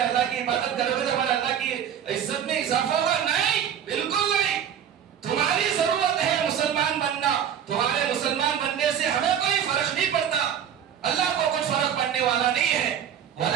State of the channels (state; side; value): quieter; left; 9.0 dB